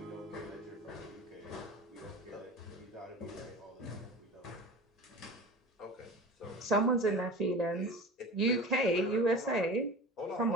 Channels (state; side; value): normal; both; correlation 0.35